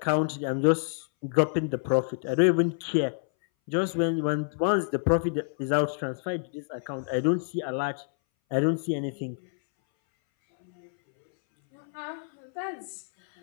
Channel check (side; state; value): right; silent; 59 dB below the other